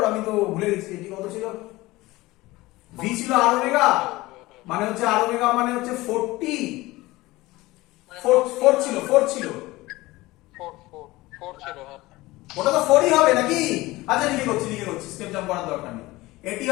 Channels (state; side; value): quieter; right; 19.6 dB